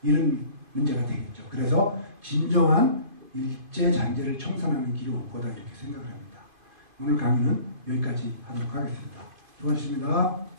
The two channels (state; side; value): late; left; 2.5 ms